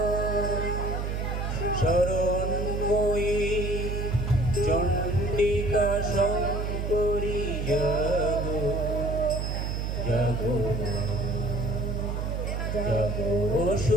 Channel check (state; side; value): noise; right; hum, 2 dB below the sound